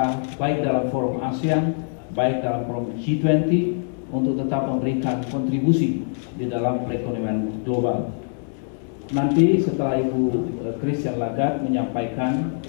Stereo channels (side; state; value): right; silent; 63 dB below the other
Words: baik dalam forum ASEAN, baik dalam forum G20 untuk tetap memberikan kontribusi di dalam perekonomian global. Nanti setelah Ibu Christine Lagarde menyampaikan